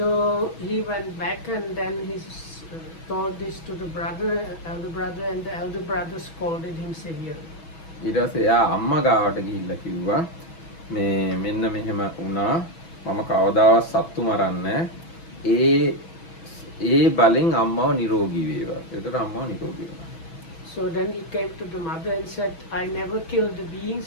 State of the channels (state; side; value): late; right; 6.1 ms